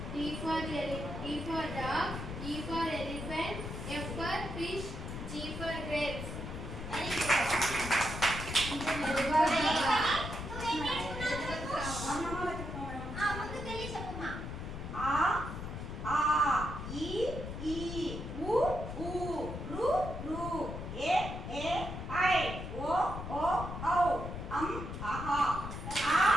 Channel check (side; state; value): left; noise; rumble, 7 dB below the sound